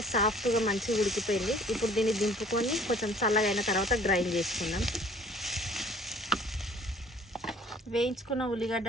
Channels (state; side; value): normal; both; correlation 0.53